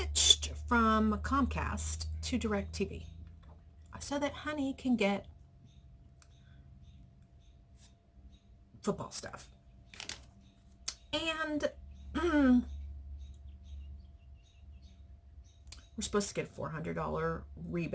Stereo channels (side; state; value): both; identical; correlation 1.00